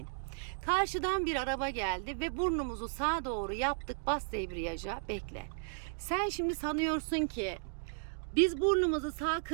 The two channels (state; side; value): silent; left; digital silence